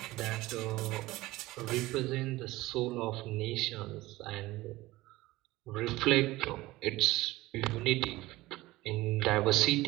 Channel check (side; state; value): left; quieter; 18.7 dB